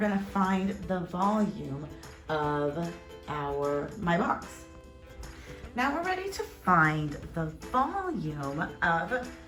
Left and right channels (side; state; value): both; identical; correlation 1.00